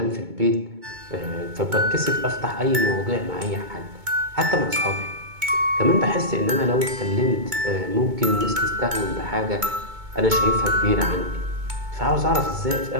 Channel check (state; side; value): late; left; 2.2 ms